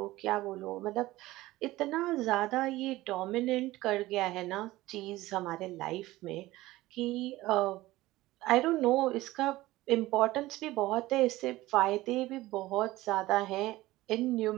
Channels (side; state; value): left; quieter; 17.8 dB